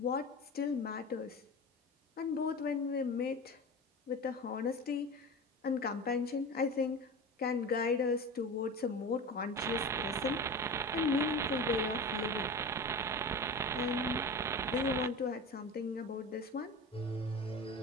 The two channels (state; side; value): normal; both; correlation 0.29